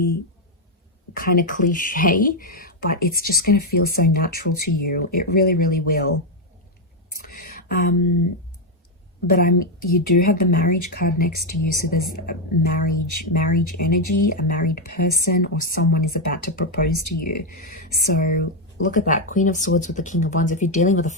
kind of cliche, but it's just going to feel so natural to you. It really, really will. But you do have the marriage card next to you, so there's a marriage energy, a married person, or someone is about to propose to you. So look at that, Queen of Swords with the King of Wands. If you're dealing with a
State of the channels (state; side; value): normal; both; correlation 0.03